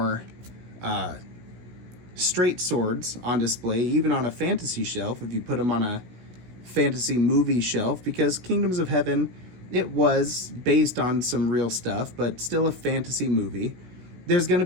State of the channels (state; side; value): late; left; 16 ms